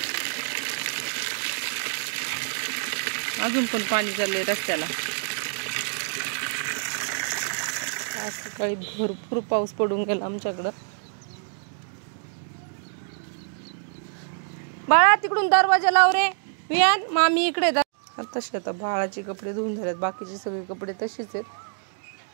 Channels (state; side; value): silent; left; digital silence